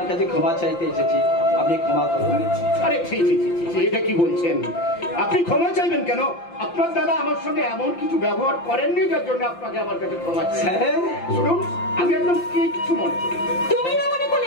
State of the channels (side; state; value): right; late; 5.8 ms